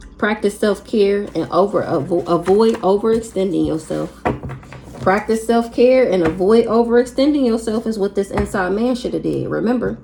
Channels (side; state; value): both; identical; correlation 1.00